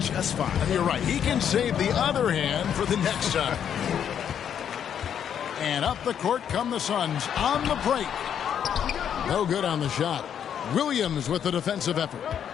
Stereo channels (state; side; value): quieter; right; 8.8 dB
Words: fine. You're right. He can save the other hand for the next time. And up the court come the Suns on the break. No good on the shot. Williams with the defensive effort.